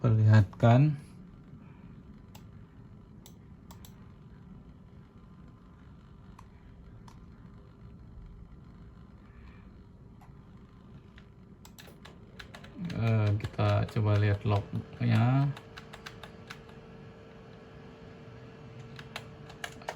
perlihatkan. Kita coba lihat lognya.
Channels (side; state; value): both; identical; correlation 1.00